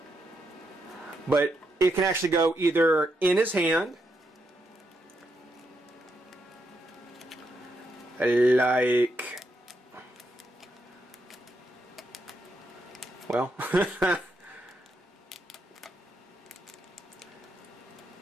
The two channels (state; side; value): normal; both; correlation 0.81